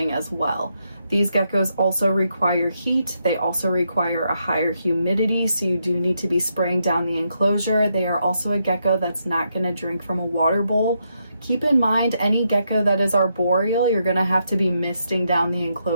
as well. These geckos also require heat. They also require a higher humidity, so you do need to be spraying down the enclosure. They are also a gecko that's not going to drink from a water bowl. Keep in mind, any gecko that is arboreal, you're going to have to be misting down the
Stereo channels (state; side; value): inverted; both; correlation -0.80